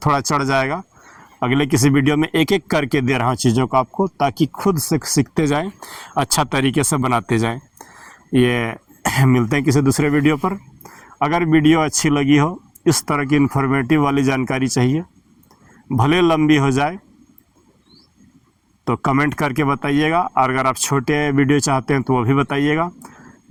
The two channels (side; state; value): both; identical; correlation 1.00